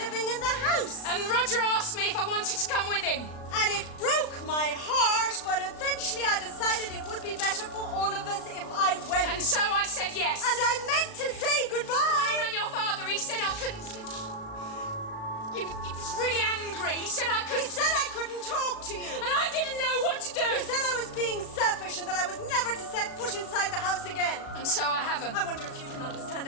in the house. And Roger asked me if I wanted to come with him. And it broke my heart, but eventually I decided it would be better for all of us if I went. And so I said yes. And I meant to say goodbye. When I rang your father, he said I couldn't... He was really angry. He said I couldn't... He said I couldn't talk to you. And I didn't know what to do. He said I was being selfish and that I was never to set foot inside the house again. And so I haven't. I wonder if you can understand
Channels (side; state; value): right; late; 36 ms